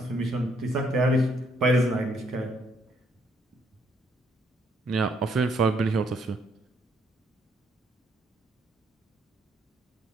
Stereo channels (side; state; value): both; normal; correlation 0.70